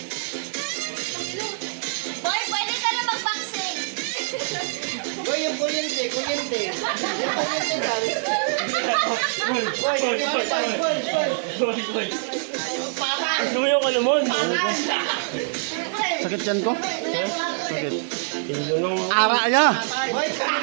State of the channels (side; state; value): left; silent; digital silence